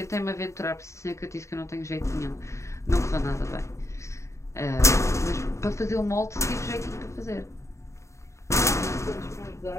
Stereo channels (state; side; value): late; right; 0.14 ms